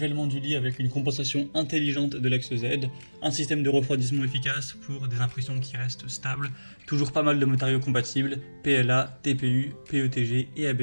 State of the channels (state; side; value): inverted; both; correlation -1.00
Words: du lit avec une compensation intelligente de l'axe Z, un système de refroidissement efficace pour des impressions qui restent stables, toujours pas mal de matériaux compatibles, PLA, TPU, PETG et